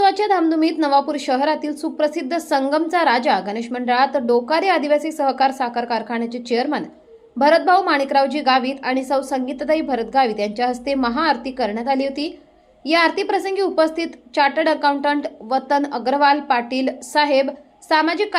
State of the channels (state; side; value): identical; both; correlation 1.00